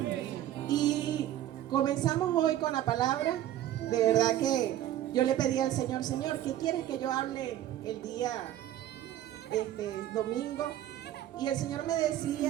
Y comenzamos hoy con la palabra. De verdad que yo le pedí al Señor: Señor, ¿qué quieres que yo hable el día domingo? Y el Señor me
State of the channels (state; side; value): quieter; left; 12.6 dB